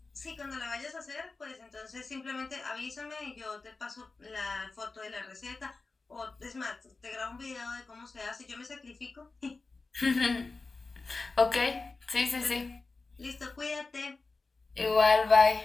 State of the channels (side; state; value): right; quieter; 3.8 dB